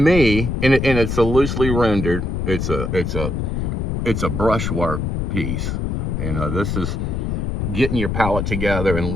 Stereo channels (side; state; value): left; noise; rumble, 1 dB below the sound